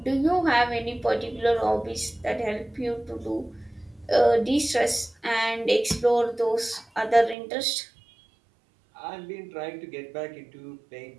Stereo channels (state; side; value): drops out; left; at 7.4 s